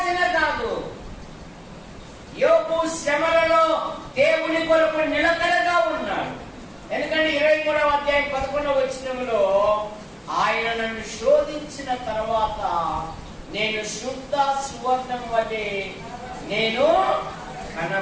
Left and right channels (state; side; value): identical; both; correlation 1.00